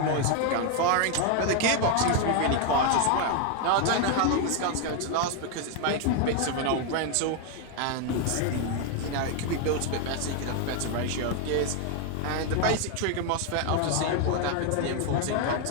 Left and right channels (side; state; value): both; different; correlation 0.01